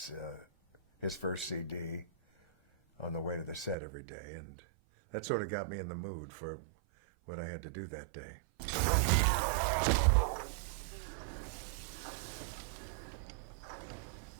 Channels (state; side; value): drops out; left; at 3.8 s